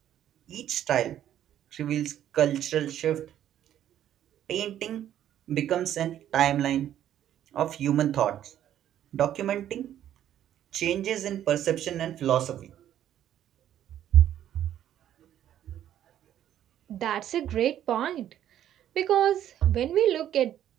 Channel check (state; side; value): quieter; left; 11.1 dB